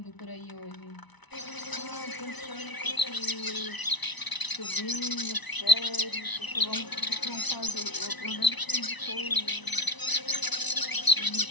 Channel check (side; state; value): right; late; 1.0 ms